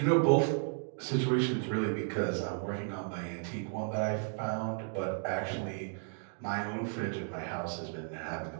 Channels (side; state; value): left; silent; 55 dB below the other